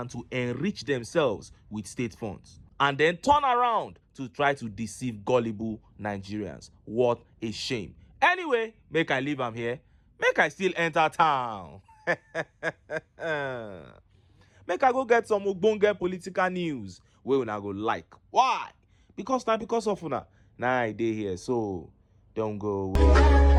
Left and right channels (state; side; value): identical; both; correlation 1.00